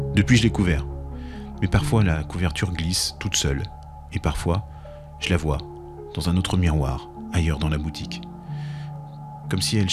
Depuis, je l'ai couvert. Mais parfois, la couverture glisse toute seule. Et parfois, je la vois dans un autre miroir, ailleurs dans la boutique. Comme si elle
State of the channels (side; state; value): both; identical; correlation 1.00